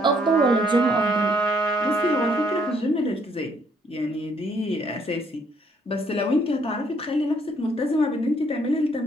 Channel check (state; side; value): normal; both; correlation 0.67